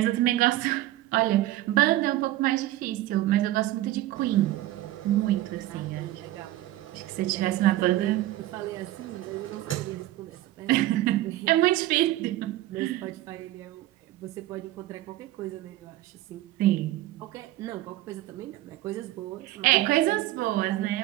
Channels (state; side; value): quieter; left; 15.5 dB